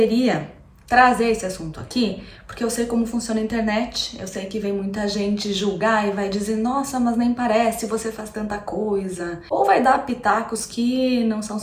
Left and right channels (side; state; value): both; identical; correlation 1.00